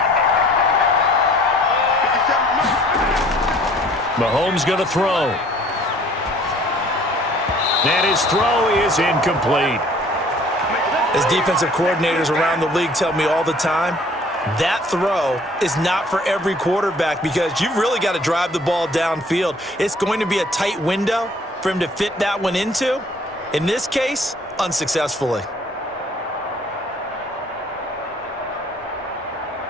Mahomes going to throw. And his throw is incomplete. As defensive coordinators around the league tell me all the time, that throw is not for every quarterback because you've really got to drive the ball downfield. It's going to be a tight window for him to fit that one into. In this case, unsuccessfully.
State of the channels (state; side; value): normal; both; correlation 0.55